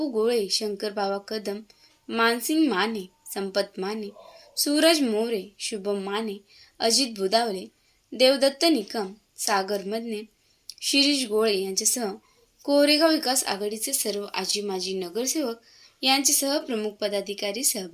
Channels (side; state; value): both; identical; correlation 1.00